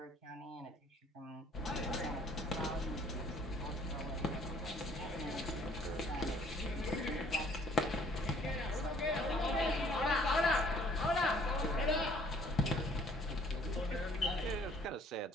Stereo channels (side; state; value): both; normal; correlation 0.59